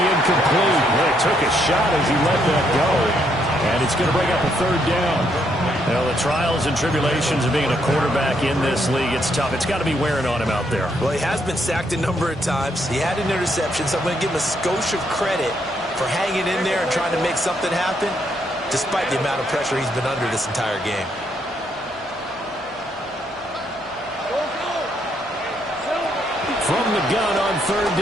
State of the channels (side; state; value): right; noise; hum, 26 dB below the sound